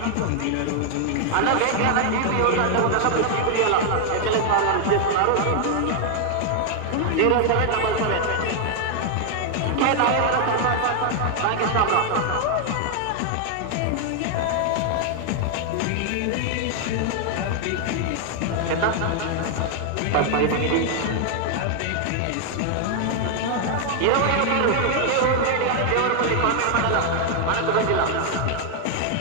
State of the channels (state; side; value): different; both; correlation 0.00